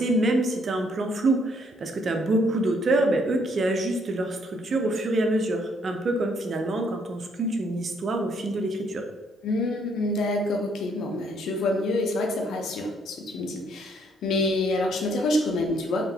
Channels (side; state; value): both; normal; correlation 0.68